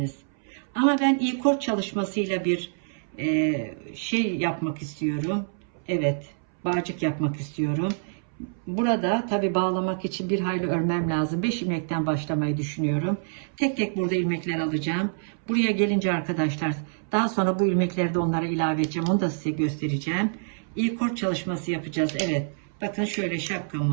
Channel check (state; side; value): silent; left; 61 dB below the other